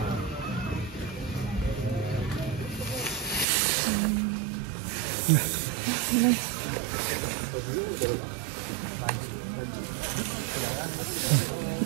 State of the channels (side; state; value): left; drops out; at 3.5 s